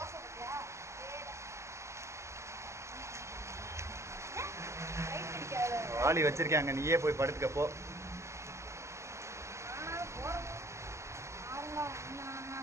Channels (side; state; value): left; late; 0.13 ms